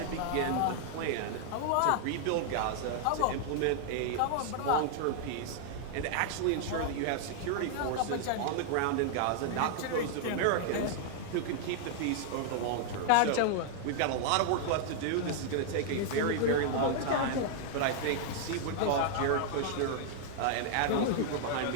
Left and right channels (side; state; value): both; different; correlation -0.01